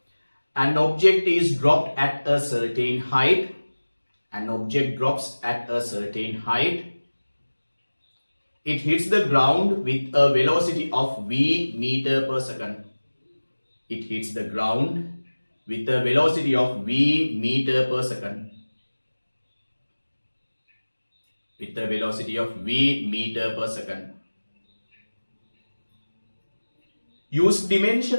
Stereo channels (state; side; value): inverted; both; correlation -1.00